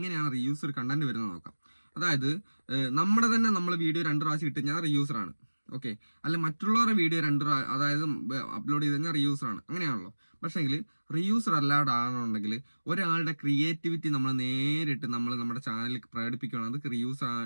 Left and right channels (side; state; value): both; inverted; correlation -1.00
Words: റീയൂസ്ഡ് കണ്ടന്റ് വരുന്നത് നോക്കാം. അതായത് നമ്മൾ വീഡിയോ 2 പ്രാവശ്യം ഇട്ട് കഴിഞ്ഞാൽ റീയൂസ്ഡ് ആണ്. ഓക്കെ, അല്ല മറ്റുള്ളവരുടെ വീഡിയോ 2 അതായത് അപ്ലോഡ് ചെയ്ത് കഴിഞ്ഞാൽ റീയൂസ്ഡ് ആണ്, അങ്ങനെയാണല്ലോ. പക്ഷേങ്കിൽ റീയൂസ്ഡ് അല്ലാണ്ടാണെന്നുണ്ടെങ്കിൽ ഒരാളുടെ ക്രിയേറ്റിവിറ്റി നമ്മൾ നേരിട്ട് നമ്മുടെ ചാനലിൽ പ്രകടിപ്പിക്കുകയാണെങ്കിൽ അത് റീയൂസ്